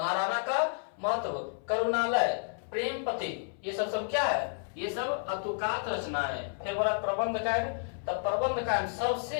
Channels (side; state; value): right; silent; 57 dB below the other